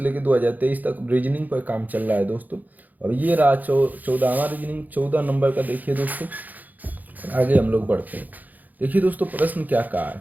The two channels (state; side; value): late; left; 0.082 ms